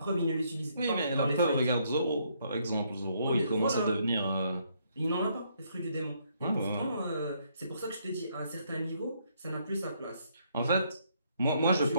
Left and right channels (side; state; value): both; inverted; correlation -0.71